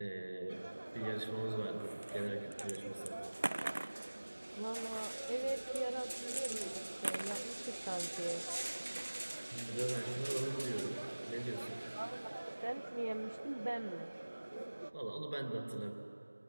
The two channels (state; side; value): inverted; both; correlation -1.00